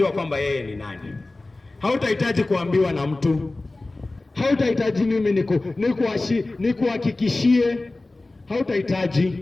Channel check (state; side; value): quieter; right; 3.1 dB